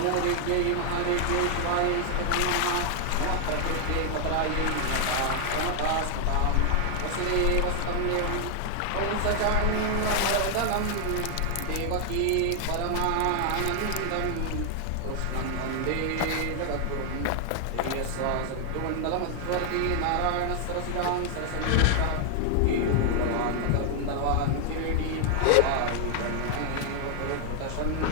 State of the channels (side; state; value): both; different; correlation 0.00